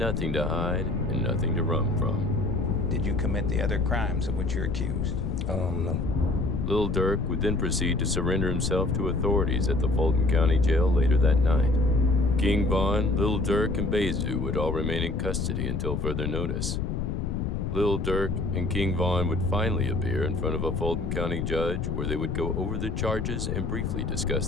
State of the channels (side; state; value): left; noise; rumble, 1 dB below the sound